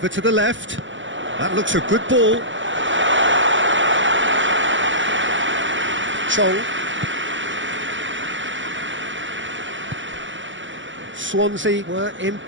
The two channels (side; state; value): left; late; 0.55 ms